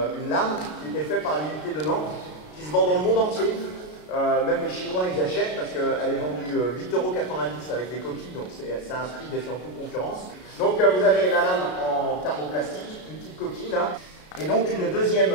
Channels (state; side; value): late; right; 33 ms